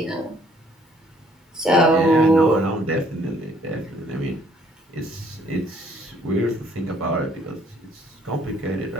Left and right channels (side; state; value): both; normal; correlation 0.63